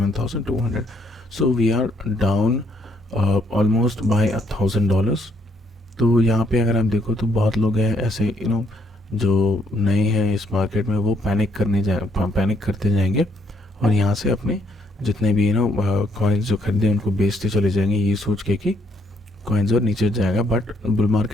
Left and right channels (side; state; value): both; normal; correlation 0.70